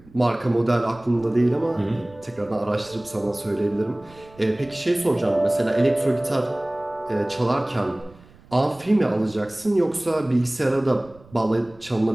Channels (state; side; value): noise; right; rumble, 25 dB below the sound